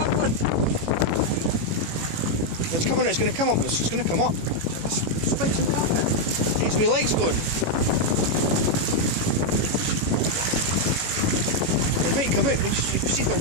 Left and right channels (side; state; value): left; late; 18 ms